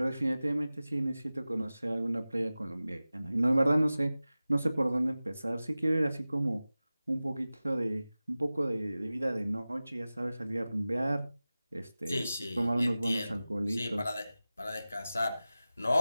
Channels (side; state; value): both; inverted; correlation -0.96